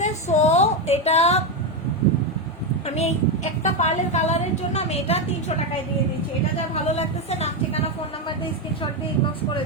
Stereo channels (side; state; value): both; normal; correlation 0.08